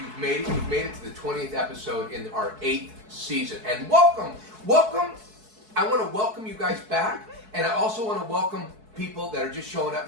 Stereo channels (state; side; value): late; left; 4.6 ms